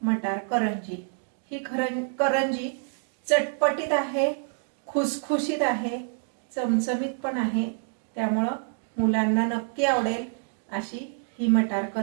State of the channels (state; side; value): silent; left; digital silence